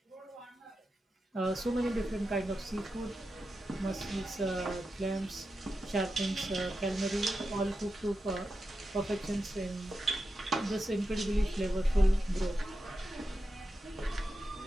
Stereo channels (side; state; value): both; normal; correlation 0.90